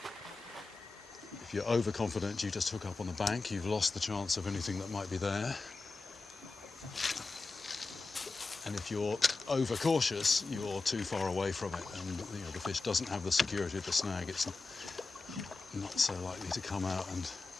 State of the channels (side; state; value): right; quieter; 3.8 dB